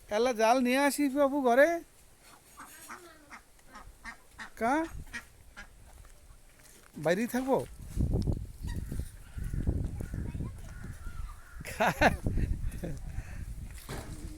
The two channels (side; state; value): both; identical; correlation 1.00